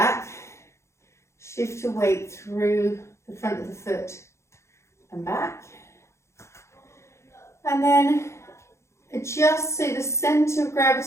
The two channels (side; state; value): right; late; 0.14 ms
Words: Shift your weight through the front of the foot and back. And then adjust so the centre of